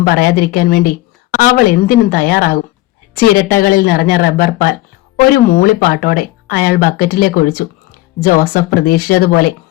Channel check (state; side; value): quieter; right; 18.1 dB